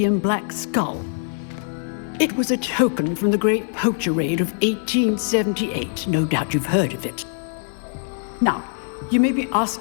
black skull. It was a token from the Great Poacher Raid of 1878. No doubt you've heard of it. Now, you may be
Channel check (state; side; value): silent; right; 64 dB below the other